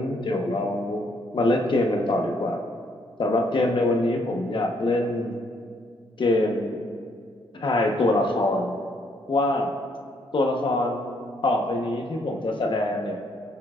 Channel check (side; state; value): both; normal; correlation 0.69